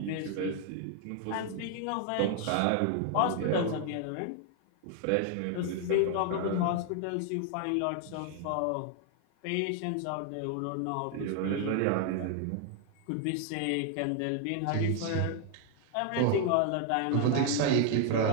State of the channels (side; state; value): both; different; correlation 0.00